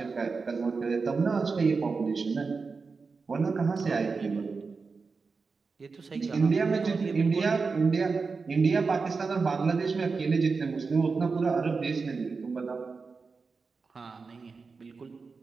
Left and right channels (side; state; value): left; quieter; 4.6 dB